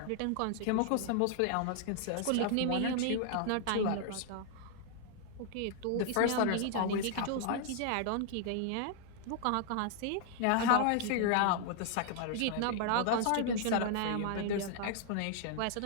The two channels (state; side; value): different; both; correlation 0.00